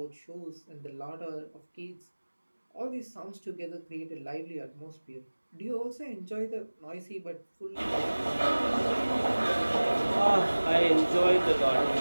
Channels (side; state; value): both; inverted; correlation -1.00